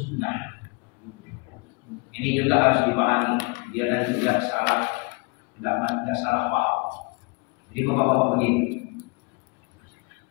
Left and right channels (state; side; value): quieter; right; 30.2 dB